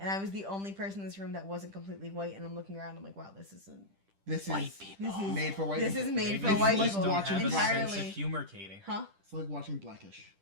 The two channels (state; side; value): late; left; 10 ms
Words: I was the only person in this room that wasn't completely white, and I'm looking around, I'm like, wow, this isn't. This White is people. This is made for white this people. is made Maybe for you white just people don't watching have a sense of entirely. humor, Katie. Huh? It's like watching Blackish.